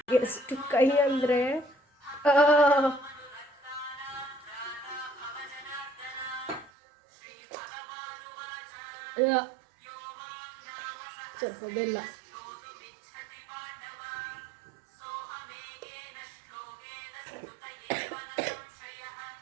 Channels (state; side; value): drops out; left; at 6.7 s